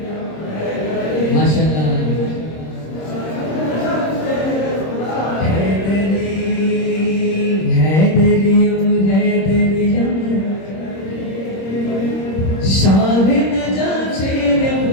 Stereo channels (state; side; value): late; right; 26 ms